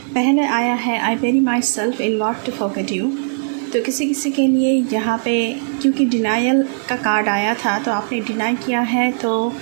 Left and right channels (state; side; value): silent; left; digital silence